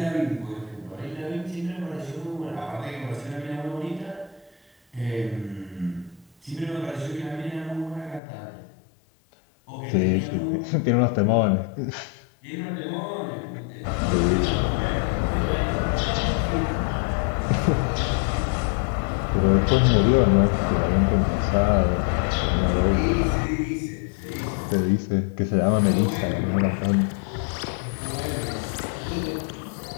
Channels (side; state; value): right; drops out; at 8.2 s